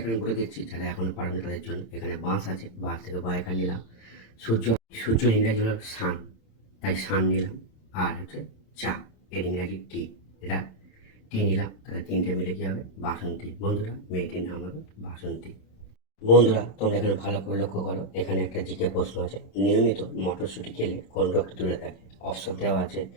বলে দিচ্ছি, যারা এখনো পারেনি তাদের জন্য। এখানে বাঁশ আছে, বাঁশ থেকে বয়াকার নিলাম। সূর্য, সূর্য ইংরাজি হলো সান, তাই সান নিলাম। আর হচ্ছে চা, এর ইংরাজি টি, এটা টি নিলাম। তাহলে তিনটে মিলে কি হবে? বাসন্তী। বন্ধুরা, মেয়েটির নাম হবে বাসন্তী। বন্ধুরা, তোমরা এখানে ভালো করে লক্ষ্য করো, এখানে একটা জিকে প্রশ্ন আছে, নিয়মিত মটরশুঁটি খেলে কোন রোগটি দূরে থাকে? অপশন দেওয়া আছে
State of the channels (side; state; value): right; late; 27 ms